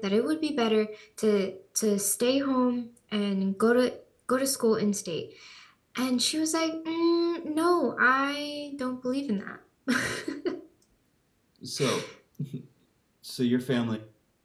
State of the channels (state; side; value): identical; both; correlation 1.00